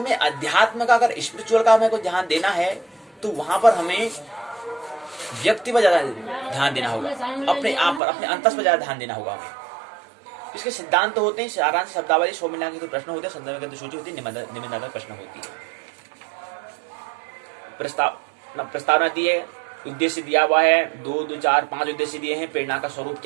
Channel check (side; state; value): left; drops out; at 8.0 s